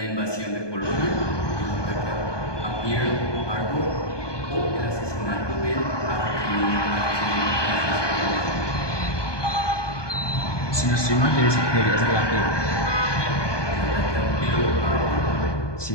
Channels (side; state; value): right; late; 1.2 ms